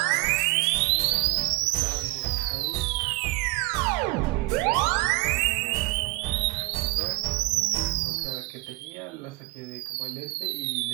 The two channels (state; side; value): quieter; left; 21.2 dB